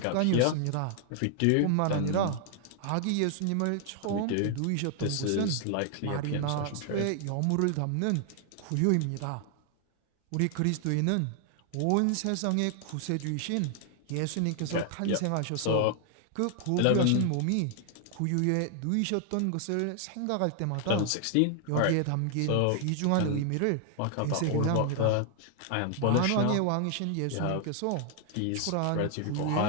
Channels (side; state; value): both; different; correlation 0.00